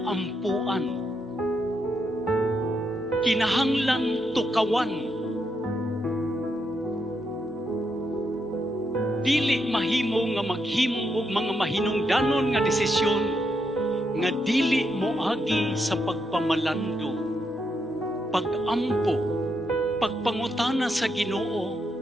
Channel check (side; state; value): both; normal; correlation 0.80